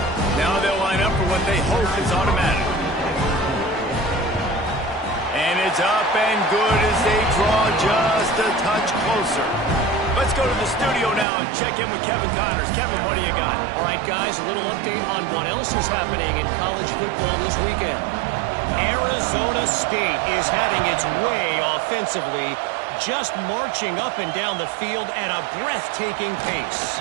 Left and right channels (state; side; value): drops out; left; at 11.2 s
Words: Now they'll line up for what they hope is automatic. And it's up and good as they draw just a touch closer. Let's go to the studio now and check in with Kevin Connors. Kevin, what do you got? All right, guys, a little update on what else is happening in college football this weekend. Arizona State is having its way offensively, just marching up and down the field at a breathtaking pace.